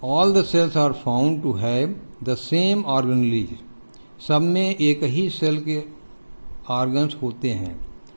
all the cells are found to have the same organelles, सब में एक ही सेल के ऑर्गन्स होते हैं।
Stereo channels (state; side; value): inverted; both; correlation -1.00